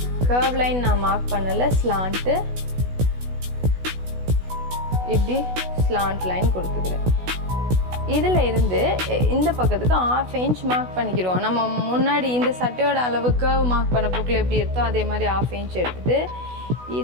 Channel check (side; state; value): left; late; 16 ms